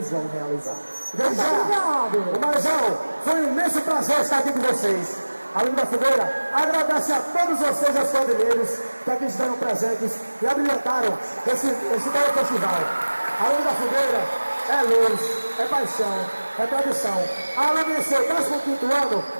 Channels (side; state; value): both; inverted; correlation -1.00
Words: vão realizar. Obrigado! Umarizal, foi um imenso prazer estar aqui com vocês. A Lume da Fogueira agradece a todos vocês, os quadrilheiros, que aqui estiveram presentes e abrilhantaram esse belo festival. A Lume da Fogueira é luz, é paixão, é tradição. A Lume do 15º ano